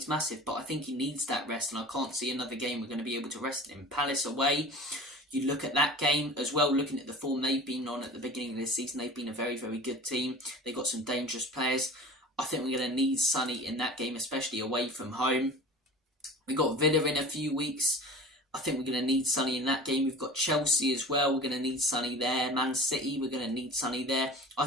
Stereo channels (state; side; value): normal; both; correlation 0.39